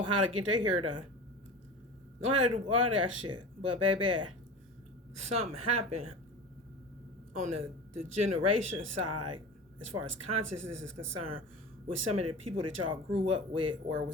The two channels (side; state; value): both; normal; correlation 0.32